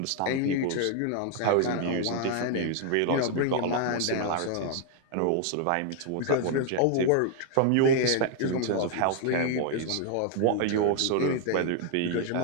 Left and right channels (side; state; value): both; different; correlation 0.00